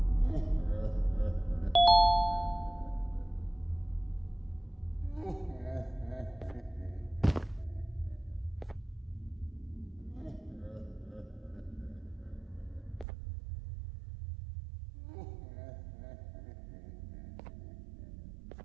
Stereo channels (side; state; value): left; drops out; at 13.1 s